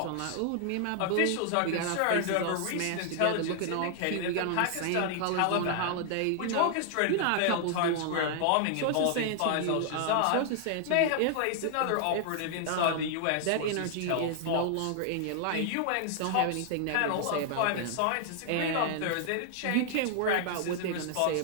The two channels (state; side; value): different; both; correlation 0.00